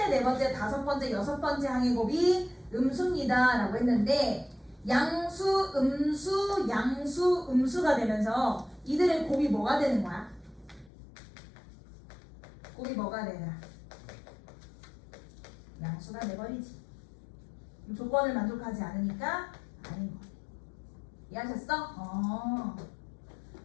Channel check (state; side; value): drops out; right; at 10.9 s